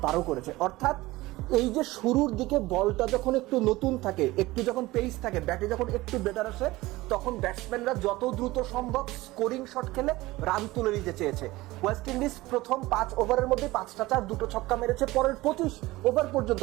12 করেছে। অর্থাৎ এই যে শুরুর দিকে বলটা যখন একটু নতুন থাকে, একটু যখন পেস থাকে, ব্যাটে যখন একটু বেটার আসে, তখন ব্যাটসম্যানরা যত দ্রুত সম্ভব স্কোরিং শট খেলে রান তুলে নিতে চেয়েছে। ওয়েস্ট ইন্ডিজ প্রথম 5 ওভারের মধ্যে 5টা 4, 2টো ছক্কা মেরেছে। পরের 25 ওভার পর্যন্ত,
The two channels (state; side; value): quieter; left; 19.2 dB